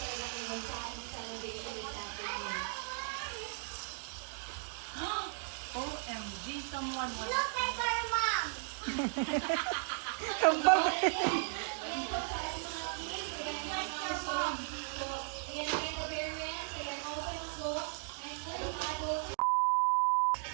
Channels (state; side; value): silent; left; 54 dB below the other